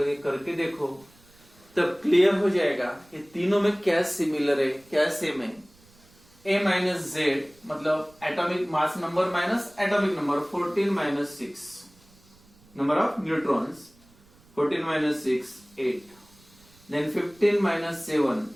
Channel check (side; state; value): right; noise; rumble, 28 dB below the sound